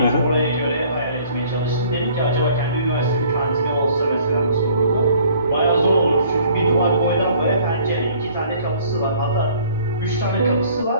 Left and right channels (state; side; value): inverted; both; correlation -0.55